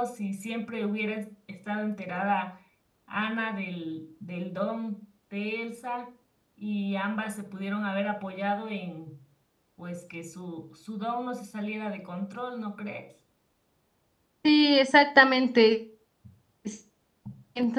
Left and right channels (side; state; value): both; identical; correlation 1.00